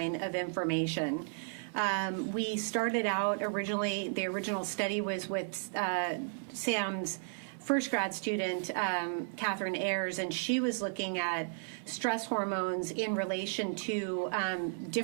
of information. We started out originally, the original study was with Sam's first grad student, Catherine Ayers, and she was looking at stress hormones in relation to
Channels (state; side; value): silent; left; 55 dB below the other